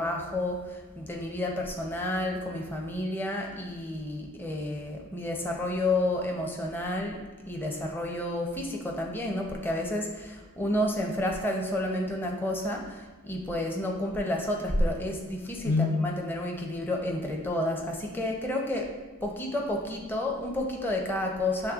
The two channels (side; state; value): both; normal; correlation 0.61